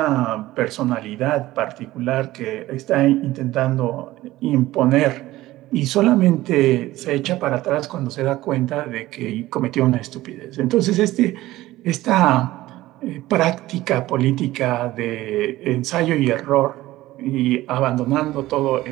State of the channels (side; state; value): left; quieter; 16.7 dB